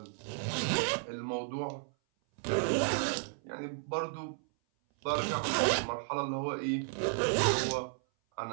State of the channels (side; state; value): left; silent; 55 dB below the other